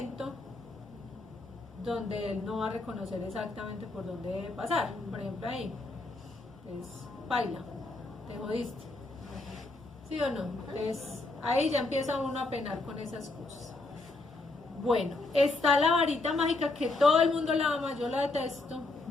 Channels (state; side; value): quieter; right; 3.2 dB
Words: donde él no va a reconocer exactamente por dónde debe pasar. Por ejemplo, ahí es baila, te jodiste, ¿sí o no? Entonces ahí ya empieza uno a penar con esas cosas. Bueno, está la varita mágica, que todo el mundo la ama, yo la detesto,